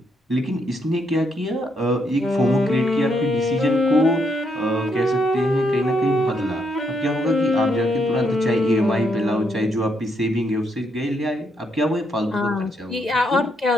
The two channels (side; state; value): both; normal; correlation 0.76